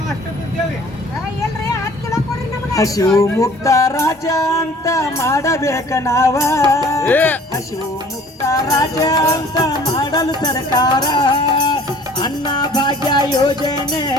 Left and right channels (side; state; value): both; normal; correlation 0.51